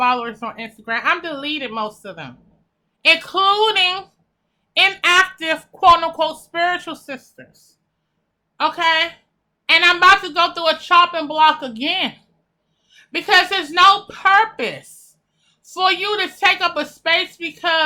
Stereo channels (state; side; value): identical; both; correlation 1.00